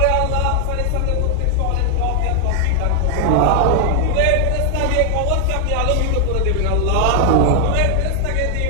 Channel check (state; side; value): different; both; correlation 0.00